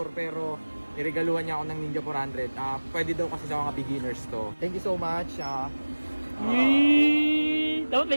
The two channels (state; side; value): inverted; both; correlation -1.00